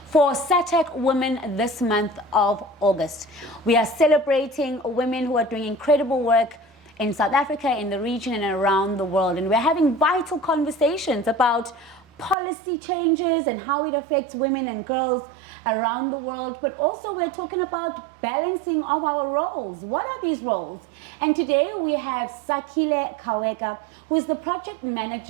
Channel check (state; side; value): drops out; left; at 12.4 s